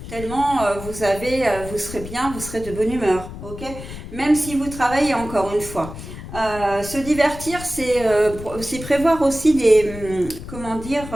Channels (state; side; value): noise; left; rumble, 12 dB below the sound